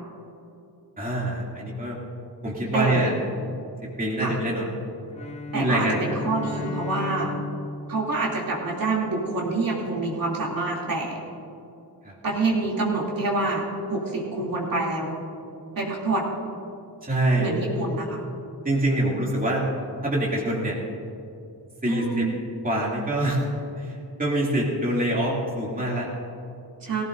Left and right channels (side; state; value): both; normal; correlation 0.37